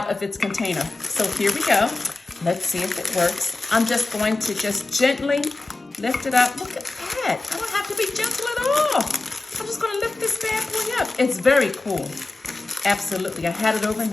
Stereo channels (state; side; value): quieter; right; 3.2 dB